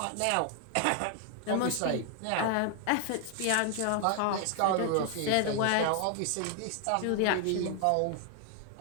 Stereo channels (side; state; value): both; different; correlation 0.00